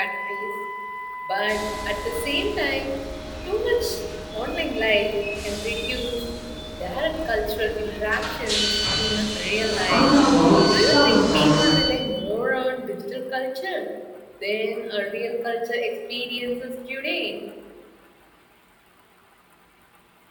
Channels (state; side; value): identical; both; correlation 1.00